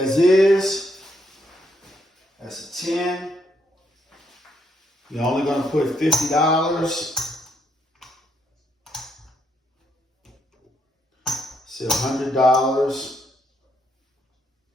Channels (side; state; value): both; normal; correlation 0.74